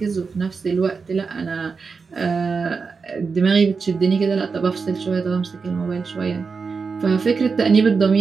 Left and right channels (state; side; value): quieter; left; 5.0 dB